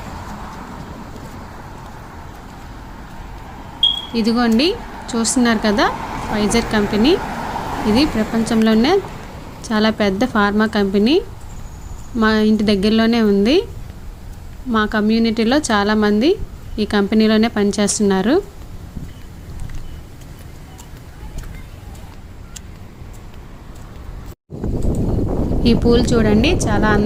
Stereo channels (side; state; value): both; identical; correlation 1.00